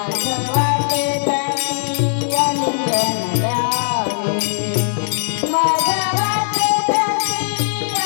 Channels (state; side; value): silent; right; digital silence